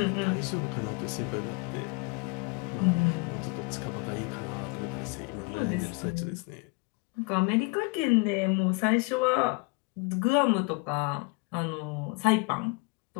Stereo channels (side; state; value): right; quieter; 29.2 dB